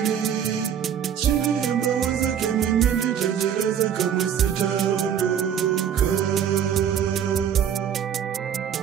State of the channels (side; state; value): left; quieter; 8.8 dB